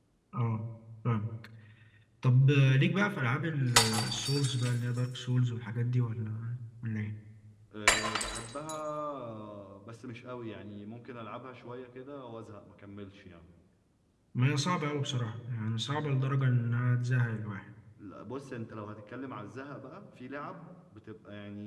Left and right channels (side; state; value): both; identical; correlation 1.00